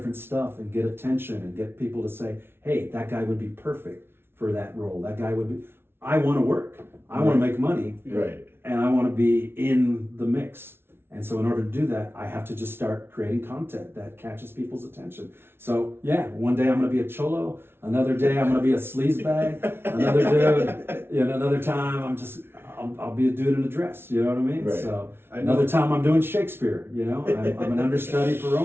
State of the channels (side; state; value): left; late; 0.11 ms